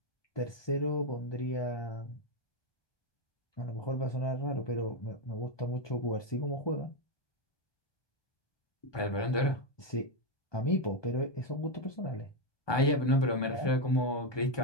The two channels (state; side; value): late; right; 1.2 ms